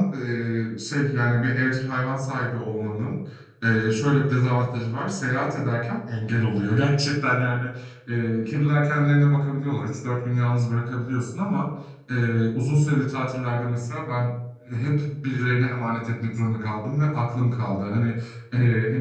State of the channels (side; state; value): both; identical; correlation 1.00